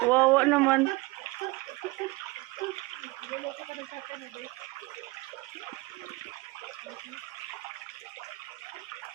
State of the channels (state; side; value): quieter; left; 23.1 dB